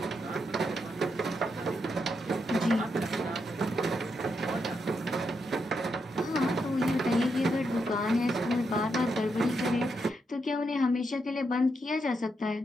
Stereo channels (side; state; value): both; normal; correlation 0.82